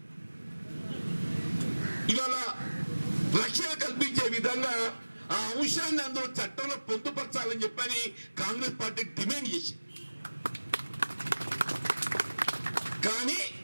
ఇవాళ రక్షణ కల్పించే విధంగా ఆ అంశాన్ని అందులో చట్టంలో పొందుపరచాలని చెప్పని కాంగ్రెస్ పార్టీ డిమాండ్ చేసింది. కానీ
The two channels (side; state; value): both; inverted; correlation -1.00